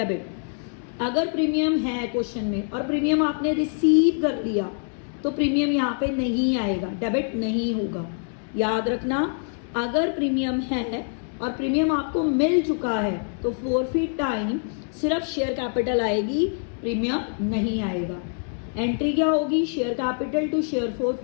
अगर प्रीमियम है क्वेश्चन में और प्रीमियम आपने रिसीव कर लिया तो प्रीमियम यहाँ पे नहीं आएगा, डेबिट नहीं होगा. याद रखना, अगर प्रीमियम है और प्रीमियम आपको मिल चुका है तो फोरफीट टाइम सिर्फ शेयर कैपिटल आएगी, प्रीमियम नहीं आएगा. एंट्री क्या होगी? Share capital to share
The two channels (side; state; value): right; silent; 59 dB below the other